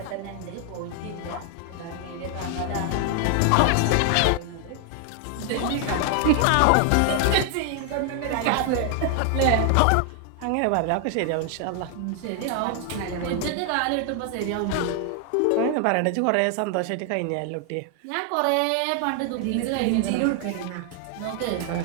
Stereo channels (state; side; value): different; both; correlation 0.00